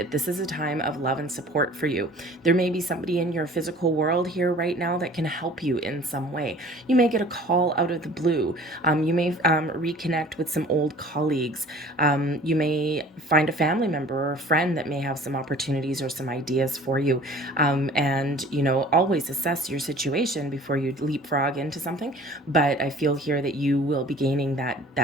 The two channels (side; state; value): both; normal; correlation 0.48